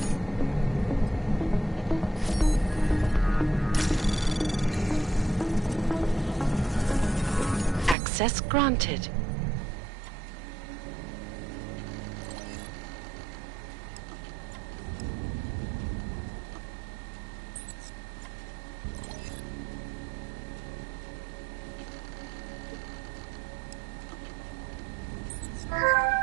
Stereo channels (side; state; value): left; drops out; at 8.0 s